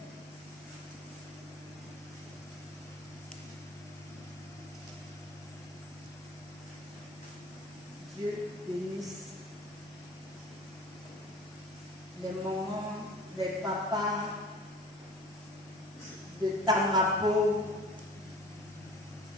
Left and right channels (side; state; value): both; normal; correlation 0.44